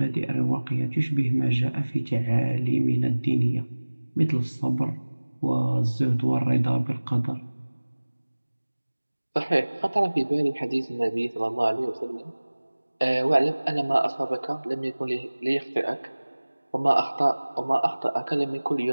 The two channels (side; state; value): both; inverted; correlation -1.00